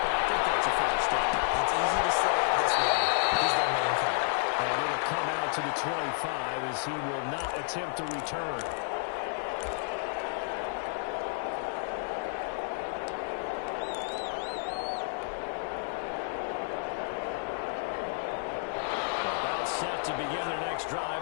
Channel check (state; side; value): silent; right; digital silence